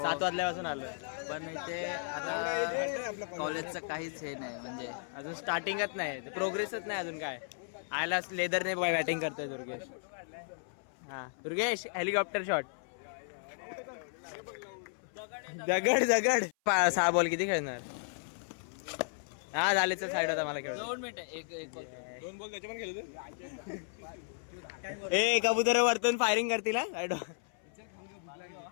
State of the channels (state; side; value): silent; right; 55 dB below the other